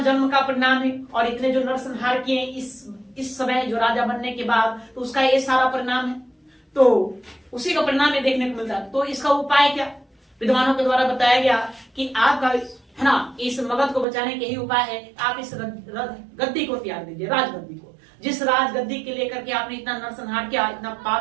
का परिणाम है, और इतने जो नरसंहार किए इस समय जो राजा बनने के बाद, तो उसका ये सारा परिणाम है, तो उसी का परिणाम ये देखने को मिलता है। तो इसका उपाय क्या, विद्वानों के द्वारा बताया गया कि आपका है ना, इस मगध को बचाने के ही उपाय है, आप इस गद्दी को त्याग दीजिए, राजगद्दी को। जिस राजगद्दी के लेकर के आपने इतना नरसंहार किया, इतना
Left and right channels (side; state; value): left; drops out; at 14.1 s